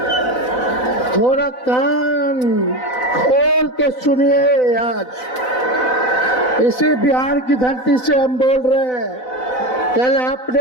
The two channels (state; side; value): late; right; 4.0 ms